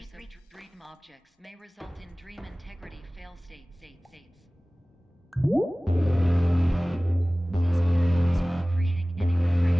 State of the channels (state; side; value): normal; both; correlation 0.98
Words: of dream objects may result in dream integrity fail states. Please pause from creating any